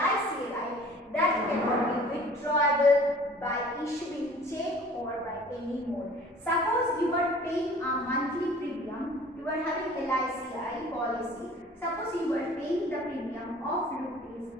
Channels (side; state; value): both; normal; correlation 0.48